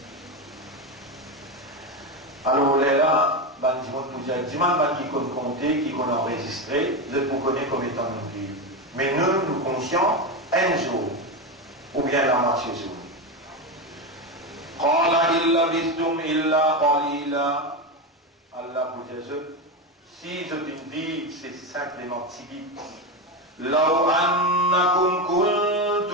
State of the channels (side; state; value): both; normal; correlation 0.14